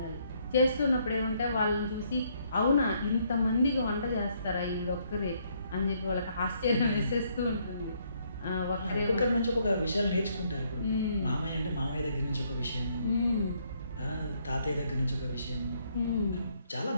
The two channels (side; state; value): both; inverted; correlation -0.70